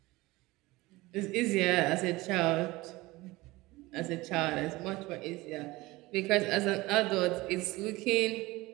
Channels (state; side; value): quieter; left; 20.4 dB